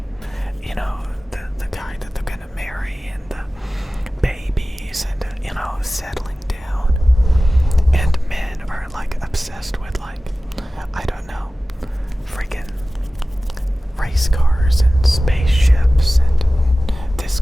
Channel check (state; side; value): normal; both; correlation 0.96